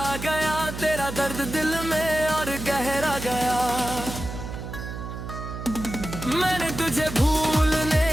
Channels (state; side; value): noise; right; hum, 8 dB below the sound